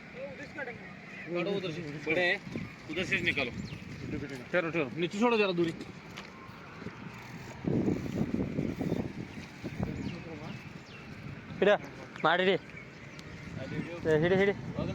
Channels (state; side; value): identical; both; correlation 1.00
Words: काढो उधर से बड़े है उधर से निकालो ठहरो ठहरो नीचे छोड़ो जरा दूरी हिड माडी रे हिड हिड बघ